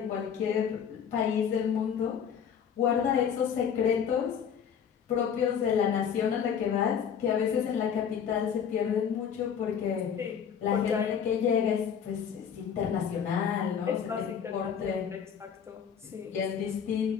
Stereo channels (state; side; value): quieter; right; 7.8 dB